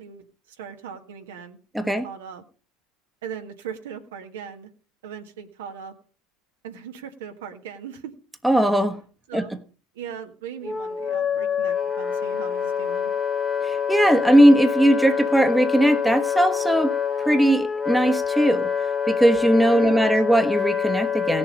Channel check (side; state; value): both; normal; correlation 0.87